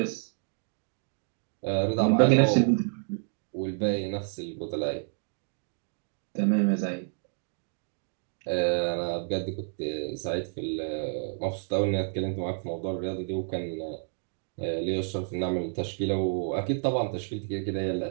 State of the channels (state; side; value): silent; left; digital silence